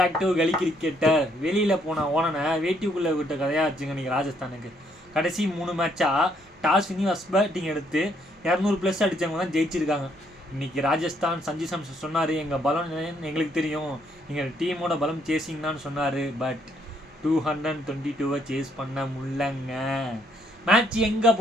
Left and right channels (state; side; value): normal; both; correlation 0.70